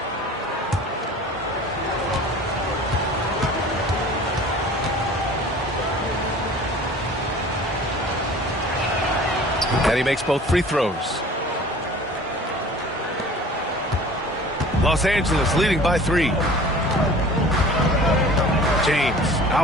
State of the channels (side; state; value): both; normal; correlation 0.44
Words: And he makes both free throws. Los Angeles leading by 3. James